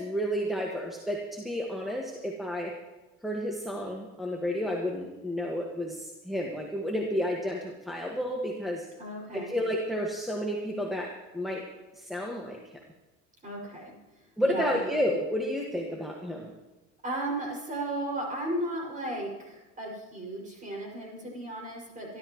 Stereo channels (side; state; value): both; normal; correlation 0.56